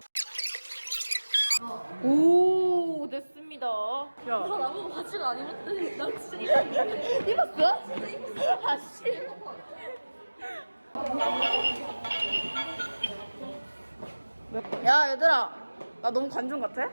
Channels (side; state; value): both; inverted; correlation -1.00